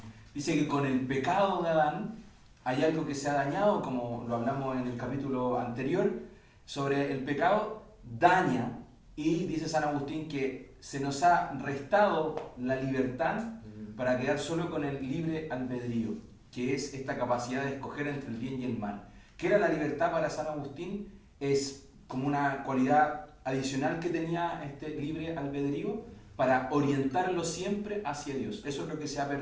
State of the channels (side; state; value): both; identical; correlation 1.00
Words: Dice que con el pecado de Adán hay algo que se ha dañado, como lo hablamos en el capítulo anterior, sobre el pecado daña, y dice San Agustín que se nos ha restado la libertad para quedar solo con el libre albedrío, que es esta capacidad de escoger entre el bien y el mal. ¿Qué era la libertad para San Agustín? Es como una cualidad adicional que tenía este libre albedrío para orientarlo siempre hacia Dios. Eso es lo que se ha